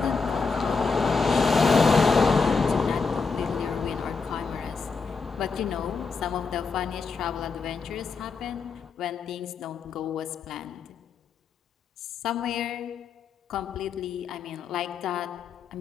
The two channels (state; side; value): quieter; right; 4.9 dB